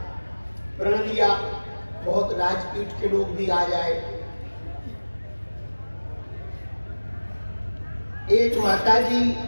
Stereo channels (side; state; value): both; inverted; correlation -1.00